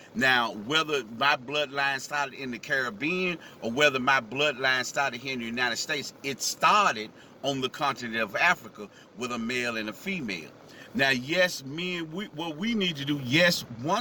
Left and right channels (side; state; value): both; identical; correlation 1.00